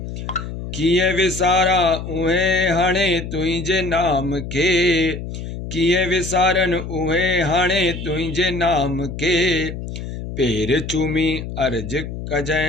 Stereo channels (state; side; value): noise; left; hum, 8 dB below the sound